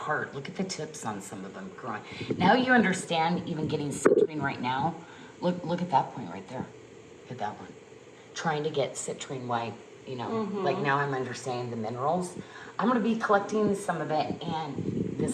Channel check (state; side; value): identical; both; correlation 1.00